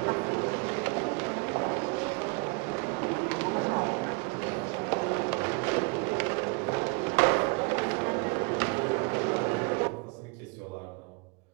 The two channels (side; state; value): left; quieter; 31.9 dB